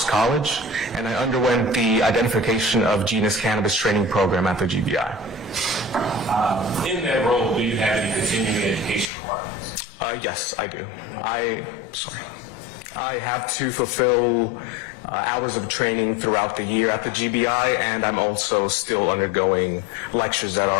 College, and I underwent the Identification of Genus Cannabis training program at the GBI. In that role, do you have any continuing education requirements? Yes, I do. I have to fulfill hours of training throughout the year at the GBI, and I'm also still undergoing lectures that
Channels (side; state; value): right; drops out; at 9.1 s